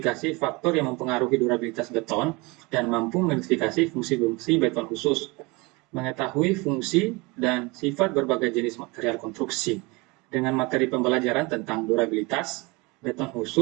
faktor yang mempengaruhi durabilitas beton dan mampu mengidentifikasi fungsi-fungsi beton khusus, mengetahui fungsi dan sifat berbagai jenis material konstruksi dengan materi pembelajaran tentang durabilitas, beton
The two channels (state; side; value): quieter; left; 25.3 dB